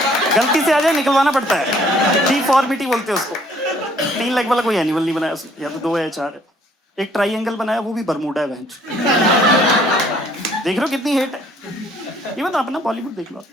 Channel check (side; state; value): both; normal; correlation 0.61